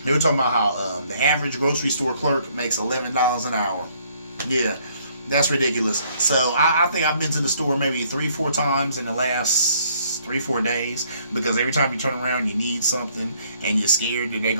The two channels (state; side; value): inverted; both; correlation -0.64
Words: They were talking about how the average grocery store clerk makes $11 an hour. Yeah. That's ridiculous. So I think I've been to the store maybe 3-4 times in the last 3-4 days because every time you turn around you need something and you're scared that they're